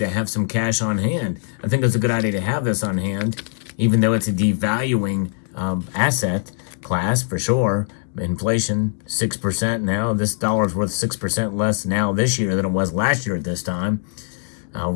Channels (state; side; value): silent; right; digital silence